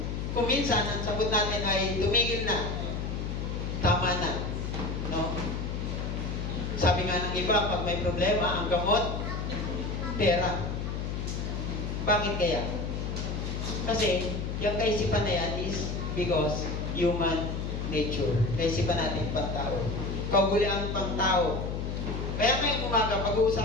kung minsan, ang sagot natin ay tumigil na, tama na. No? Sabi nga ng iba, pag may problema, ang gamot, pera. Bakit kaya? Kasi, yung kaisipan na yan is because human nature. Kaisipan natin pang tao. Kaugalian pang tao. Kaya ngayong umaga,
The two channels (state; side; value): noise; left; hum, 3 dB below the sound